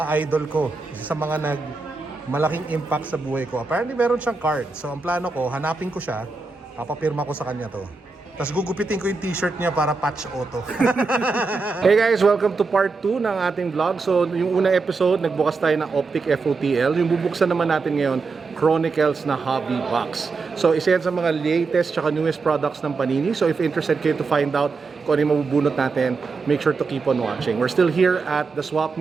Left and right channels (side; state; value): left; quieter; 4.2 dB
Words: idol ko, isa sa mga malaking impact sa buhay ko. Apparently meron siyang card. So ang plano ko, hanapin ko siya, papapirma ko sa kanya to. Tapos gugupitin ko yung t-shirt niya para patch auto. Hey guys, welcome to part 2 ng ating vlog. So yung unang episode, nagbukas tayo ng Optic FOTL. Yung bubuksan naman natin ngayon, Chronicles na hobby box. So isa yan sa mga latest tsaka newest products ng Panini. So if interested kayo to find out kung ano yung mabubunot natin, make sure to keep on watching. We're still here at the Swap